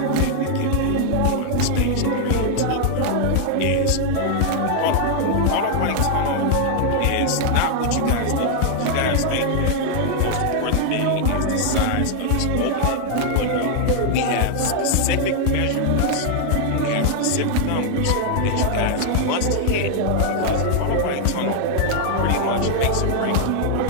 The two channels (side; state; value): both; different; correlation 0.00